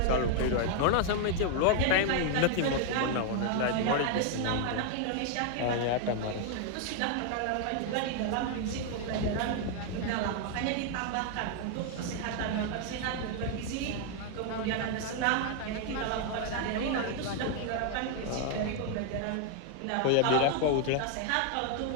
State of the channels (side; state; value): both; different; correlation 0.00